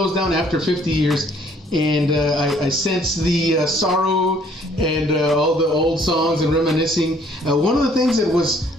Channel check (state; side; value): normal; both; correlation 0.61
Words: down after 50 years. And I sense the sorrow and all the old songs and reminiscing. One of the things that was,